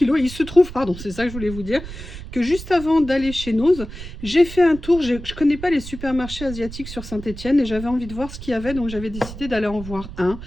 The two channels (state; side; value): noise; right; rumble, 12 dB below the sound